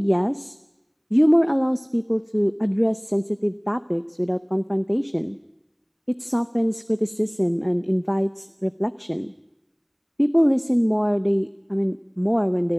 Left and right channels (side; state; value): both; identical; correlation 1.00